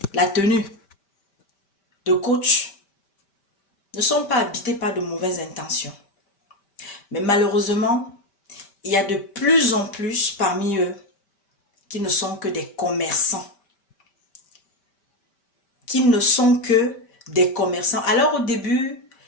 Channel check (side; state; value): right; late; 5.1 ms